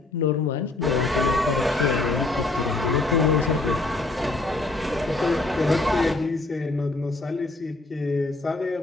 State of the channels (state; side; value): quieter; right; 3.1 dB